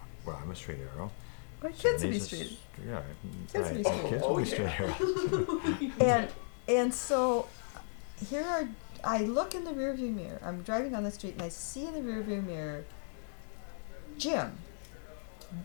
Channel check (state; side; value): silent; right; digital silence